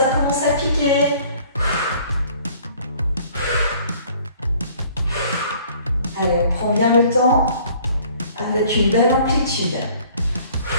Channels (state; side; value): inverted; both; correlation -0.54